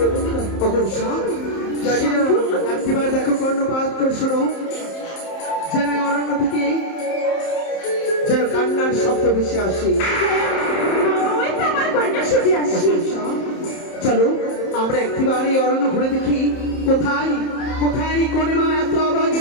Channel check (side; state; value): right; late; 30 ms